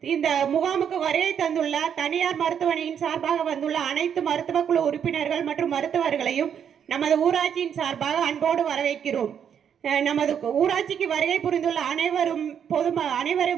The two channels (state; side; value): quieter; left; 8.3 dB